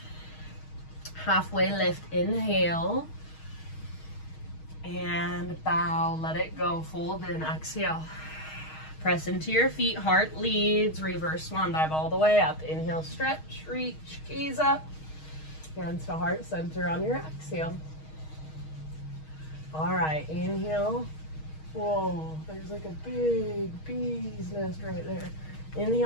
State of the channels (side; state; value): right; late; 6.4 ms